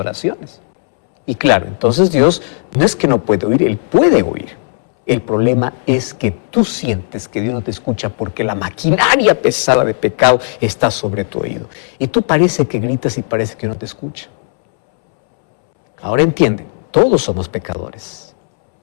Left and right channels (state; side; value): silent; right; 70 dB below the other